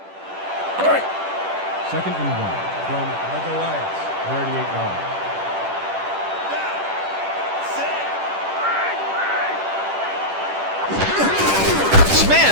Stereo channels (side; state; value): left; late; 10 ms